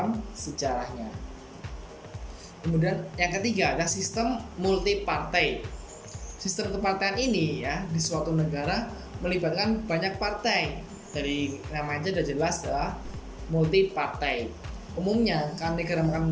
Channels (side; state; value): both; identical; correlation 1.00